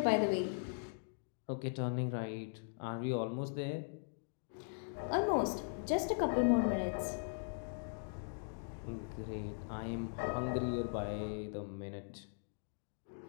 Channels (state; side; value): silent; right; digital silence